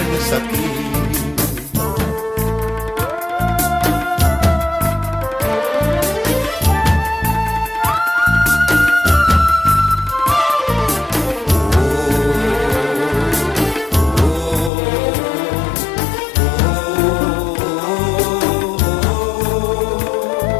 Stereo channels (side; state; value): right; drops out; at 14.7 s